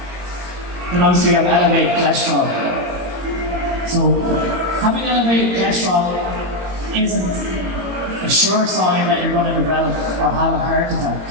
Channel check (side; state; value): left; late; 22 ms